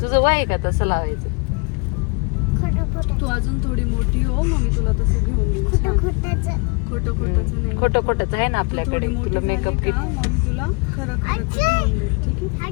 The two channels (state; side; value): quieter; right; 31.7 dB